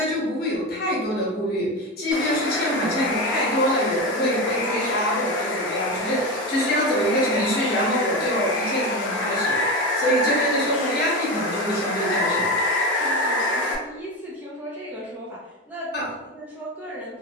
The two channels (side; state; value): both; normal; correlation 0.20